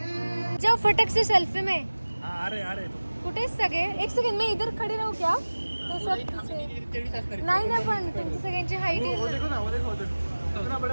जाओ फटक से सेल्फी में। आ रहे कुठे सगळे? एक सेकंड, मी इधर खडी राहू क्या? तो सब पीछे. नाही ना, पण तुमची सगळ्यांची हाईट वो आहे देखो ना, वो देखो कितना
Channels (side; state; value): both; inverted; correlation -1.00